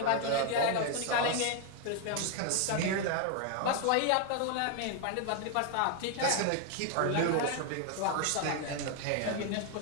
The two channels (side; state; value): both; different; correlation 0.00